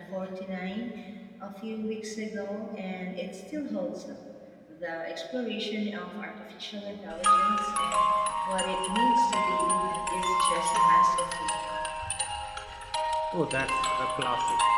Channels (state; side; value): identical; both; correlation 1.00